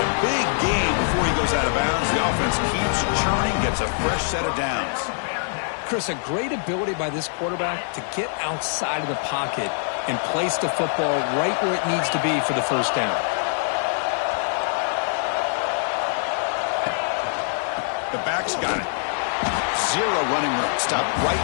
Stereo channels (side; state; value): right; silent; digital silence